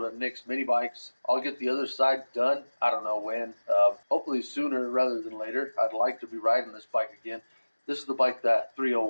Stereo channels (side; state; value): both; inverted; correlation -1.00